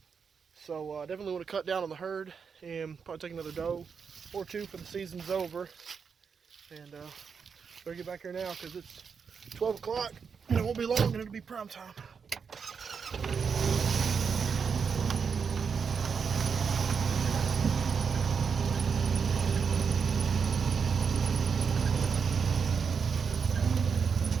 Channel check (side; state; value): left; quieter; 6.1 dB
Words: So I definitely want to cut down on the herd and probably take another doe or two for the season's over. And better get back here now because it's 12 o'clock and it won't be long and it'll be prime time.